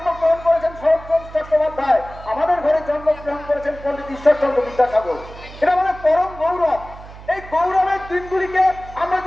করেছেন শরৎচন্দ্র চট্টোপাধ্যায়, আমাদের ঘরে জন্মগ্রহণ করেছেন পণ্ডিত ঈশ্বরচন্দ্র বিদ্যাসাগর। এটা আমাদের পরম গৌরব। এই গৌরবের দিনগুলিকে আমরা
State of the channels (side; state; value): right; noise; hum, 16 dB below the sound